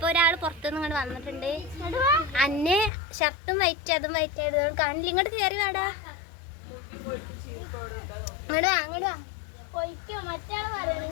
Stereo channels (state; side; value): drops out; right; at 2.9 s